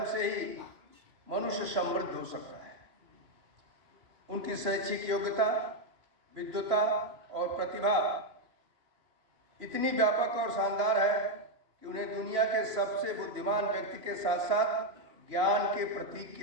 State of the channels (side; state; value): left; late; 3.0 ms